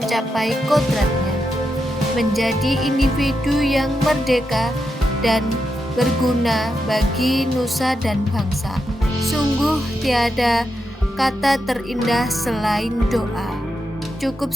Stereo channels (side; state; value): both; normal; correlation 0.86